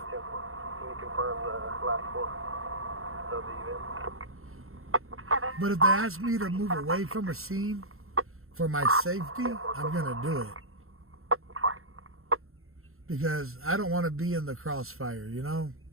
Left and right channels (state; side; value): late; left; 0.62 ms